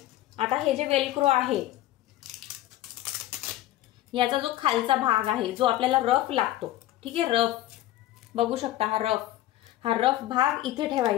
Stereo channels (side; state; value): right; quieter; 14.8 dB